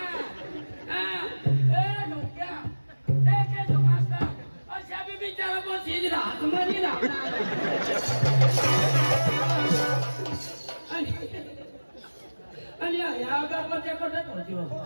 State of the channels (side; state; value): both; inverted; correlation -1.00